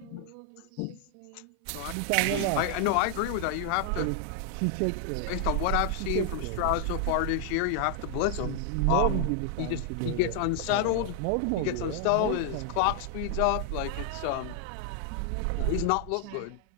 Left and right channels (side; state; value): both; different; correlation 0.00